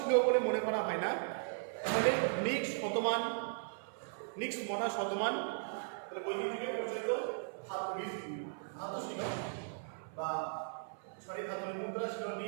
বলে মনে করা হয় না। তাহলে নিক্স শতমান, নিক্স মনা শতমান, তাহলে বৈদিক যুগে প্রচলিত ধাতু ছিল বা ধাতুর মুদ্রা ছিল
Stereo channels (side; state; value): left; silent; 53 dB below the other